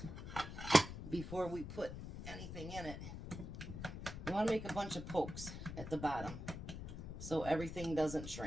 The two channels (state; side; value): noise; left; rumble, 8 dB below the sound